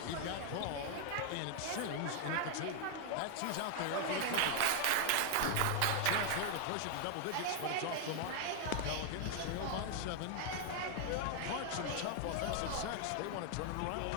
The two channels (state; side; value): different; both; correlation 0.00